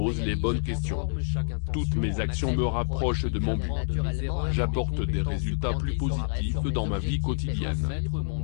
les bonnes questions. Toutes mes actions me rapprochent de mon but. J'apporte des résultats plus positifs dans ma vie quotidienne.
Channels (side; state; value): right; silent; digital silence